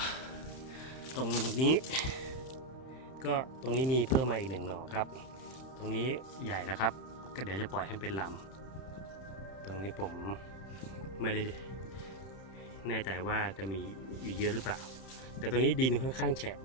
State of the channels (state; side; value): late; right; 31 ms